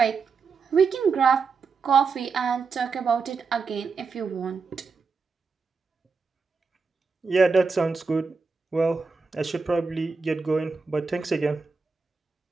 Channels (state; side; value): quieter; left; 4.8 dB